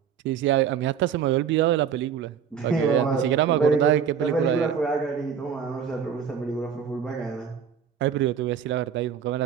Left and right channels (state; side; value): quieter; left; 7.6 dB